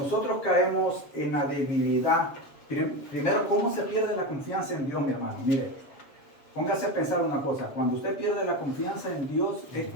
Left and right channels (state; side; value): late; right; 7.3 ms